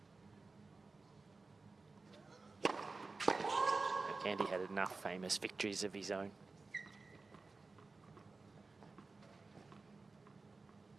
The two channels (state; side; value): quieter; left; 3.8 dB